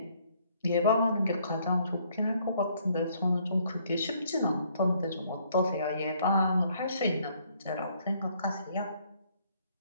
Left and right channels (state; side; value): inverted; both; correlation -0.66